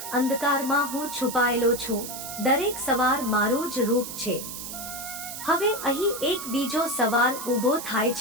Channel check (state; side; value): noise; right; hiss, 8 dB below the sound